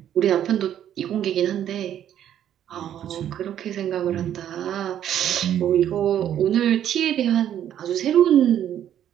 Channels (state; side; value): quieter; left; 10.5 dB